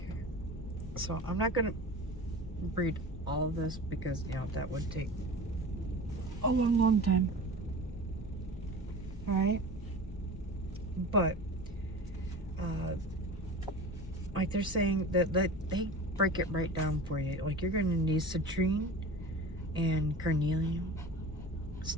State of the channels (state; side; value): normal; both; correlation 0.36